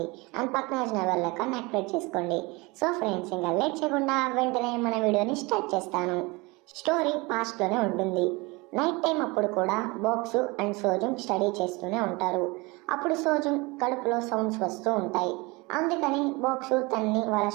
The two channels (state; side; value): quieter; left; 25.2 dB